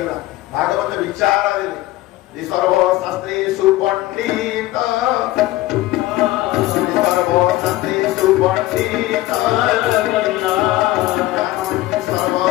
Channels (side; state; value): right; quieter; 17.1 dB